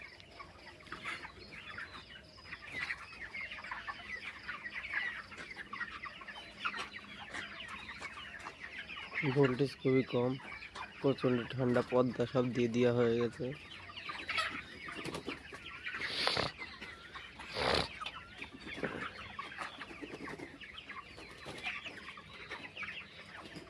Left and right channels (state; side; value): identical; both; correlation 1.00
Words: ভোল্টেজ খুবই কম, প্রচণ্ড ঠান্ডা, পর্দা সব দিয়ে দেওয়া হয়ে গেছে।